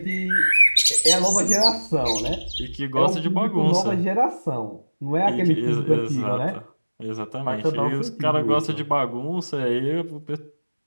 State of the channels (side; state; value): both; inverted; correlation -1.00